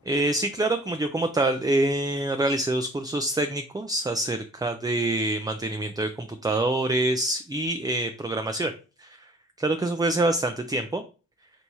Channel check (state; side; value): normal; both; correlation 0.52